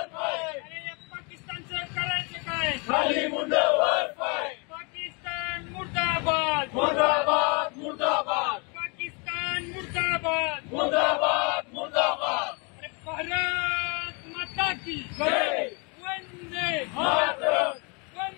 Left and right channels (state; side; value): quieter; right; 32.5 dB